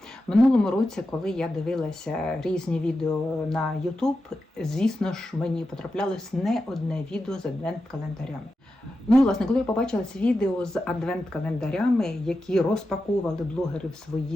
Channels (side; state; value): both; normal; correlation 0.90